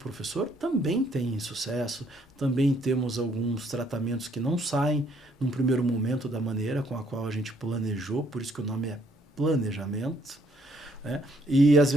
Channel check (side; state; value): both; normal; correlation 0.67